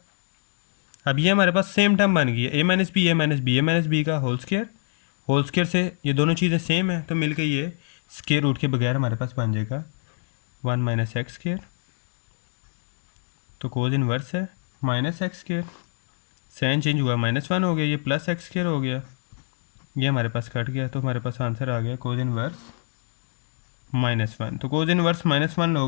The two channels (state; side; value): silent; right; digital silence